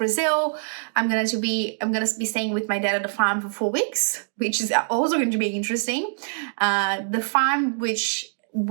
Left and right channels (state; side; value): silent; left; digital silence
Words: I'm gonna be staying with my dad at the farm for 4 weeks, which is also going to be interesting. The farm which